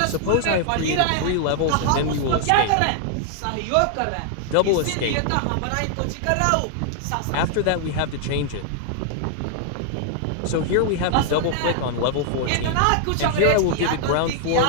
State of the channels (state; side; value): different; both; correlation 0.00